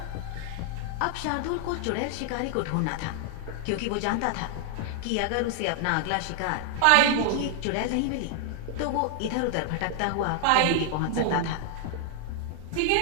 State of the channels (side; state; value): both; different; correlation 0.00